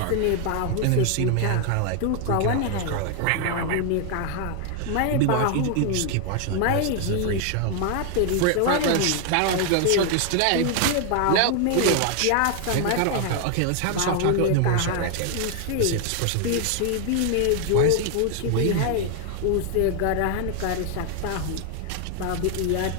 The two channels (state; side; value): different; both; correlation 0.00